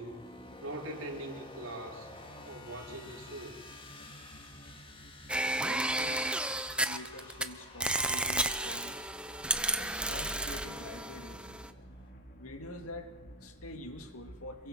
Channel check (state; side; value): normal; both; correlation 0.13